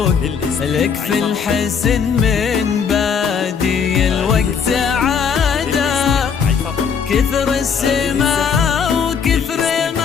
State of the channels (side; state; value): right; quieter; 6.6 dB